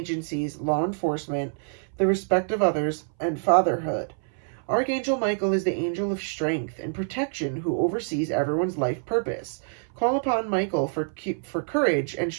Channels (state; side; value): silent; left; 60 dB below the other